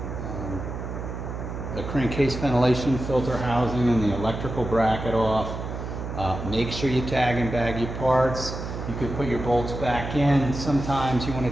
the crankcase ventilation filter housing and the electrical bracket off. Make sure you tag and bag your parts. You can put your bolts back in. Sometimes you want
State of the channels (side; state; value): right; noise; hum, 7 dB below the sound